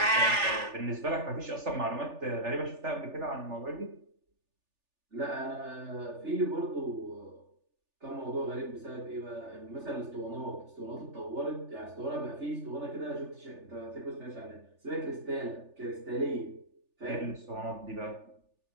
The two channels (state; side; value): late; left; 3.4 ms